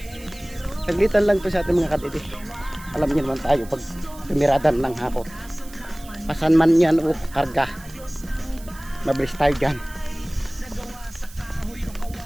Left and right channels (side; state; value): right; noise; hiss, 20 dB below the sound